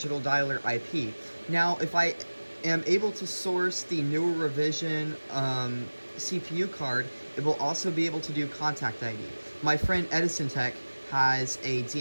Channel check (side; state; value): both; inverted; correlation -1.00